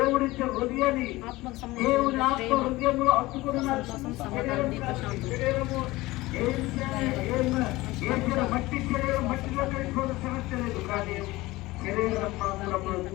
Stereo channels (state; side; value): quieter; right; 19.5 dB